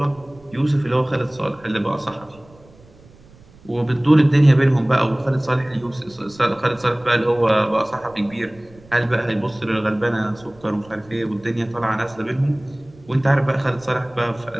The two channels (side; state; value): right; noise; rumble, 25 dB below the sound